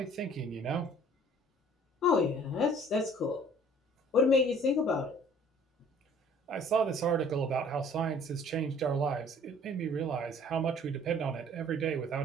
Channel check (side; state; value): both; normal; correlation 0.53